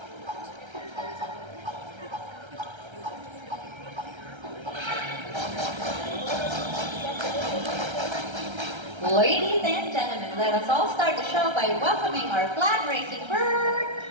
Ladies and gentlemen, let us all start the show by welcoming our flag racing bird,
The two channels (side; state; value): left; late; 1.3 ms